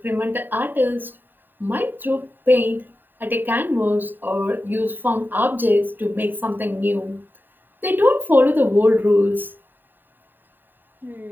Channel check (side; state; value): left; late; 0.092 ms